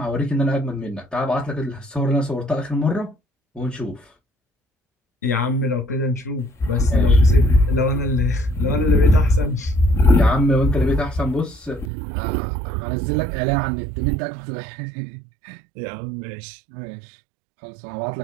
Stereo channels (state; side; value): drops out; left; at 11.9 s